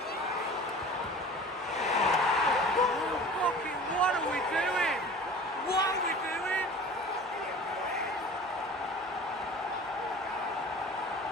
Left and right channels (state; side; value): normal; both; correlation 0.42